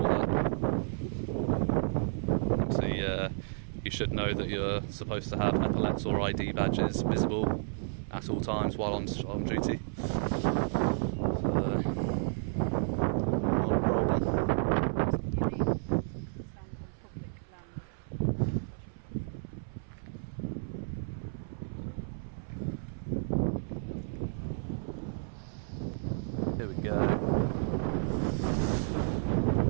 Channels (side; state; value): left; silent; 57 dB below the other